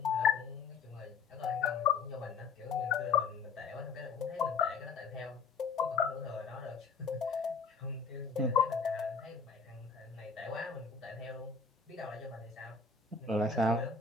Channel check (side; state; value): right; quieter; 5.1 dB